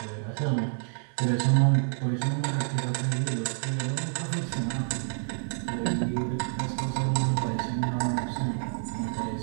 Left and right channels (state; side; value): silent; left; 59 dB below the other